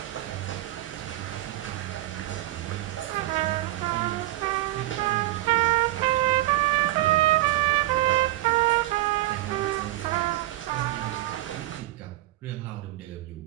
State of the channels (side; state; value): left; quieter; 16.8 dB